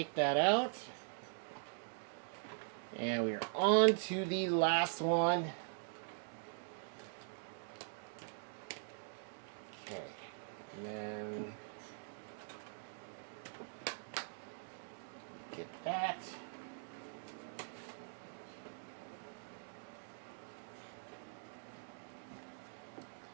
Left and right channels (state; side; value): silent; left; digital silence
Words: that out. And we are on to the last one. Okay. And then get that.